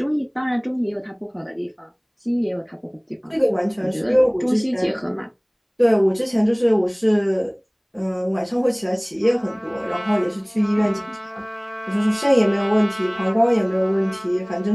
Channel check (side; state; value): both; identical; correlation 1.00